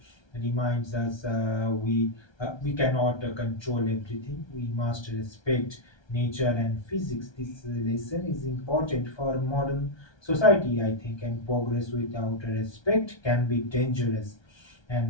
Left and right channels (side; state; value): right; late; 1.3 ms